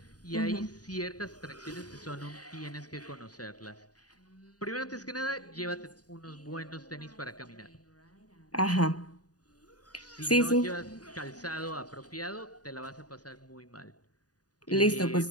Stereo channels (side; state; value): right; late; 0.68 ms